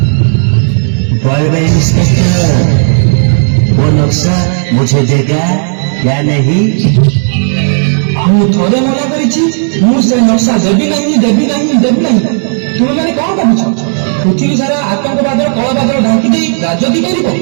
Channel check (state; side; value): silent; left; digital silence